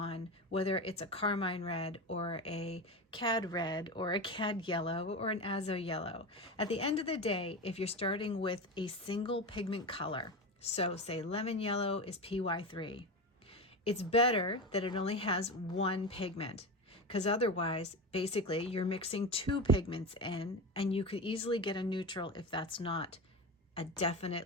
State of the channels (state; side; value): normal; both; correlation 0.22